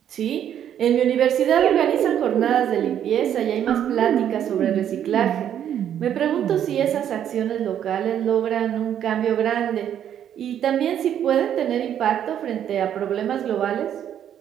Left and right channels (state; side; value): quieter; left; 9.9 dB